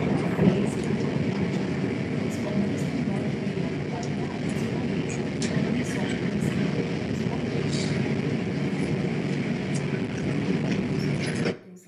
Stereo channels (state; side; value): identical; both; correlation 1.00